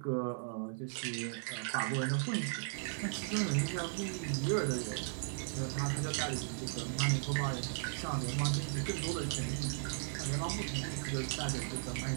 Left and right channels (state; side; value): silent; left; digital silence